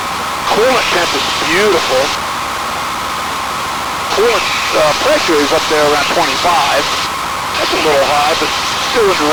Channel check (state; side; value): identical; both; correlation 1.00